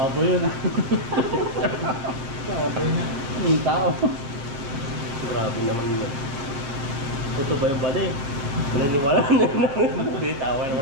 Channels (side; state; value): left; late; 7.4 ms